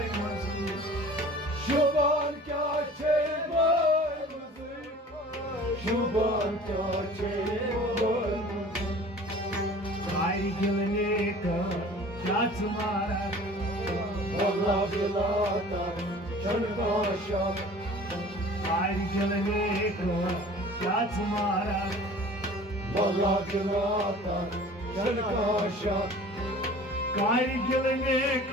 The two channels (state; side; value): normal; both; correlation 0.45